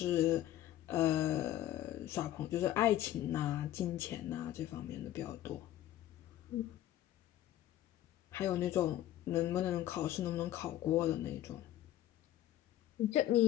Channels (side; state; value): right; quieter; 13.1 dB